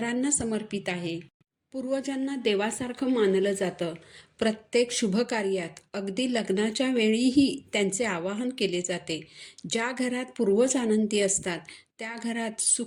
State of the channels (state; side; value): identical; both; correlation 1.00